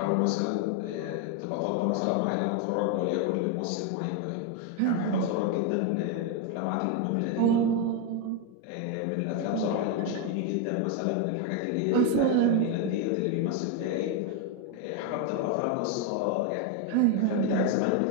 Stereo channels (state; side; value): different; both; correlation 0.02